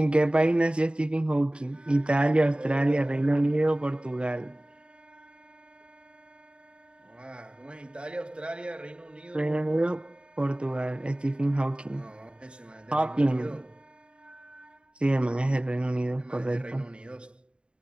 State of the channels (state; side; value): late; left; 0.052 ms